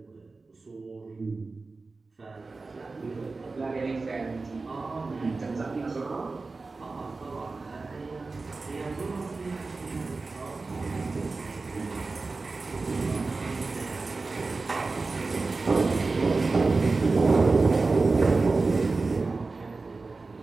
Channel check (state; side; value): quieter; left; 3.8 dB